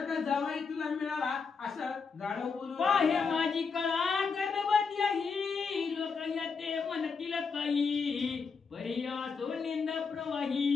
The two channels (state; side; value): quieter; right; 5.2 dB